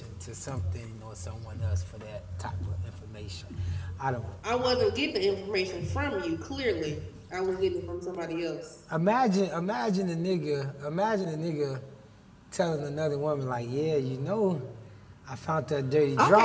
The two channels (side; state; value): both; identical; correlation 1.00